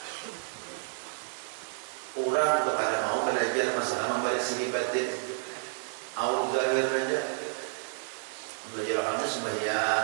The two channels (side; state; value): left; silent; digital silence